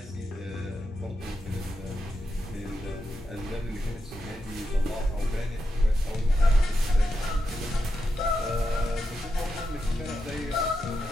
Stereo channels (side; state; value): both; normal; correlation 0.86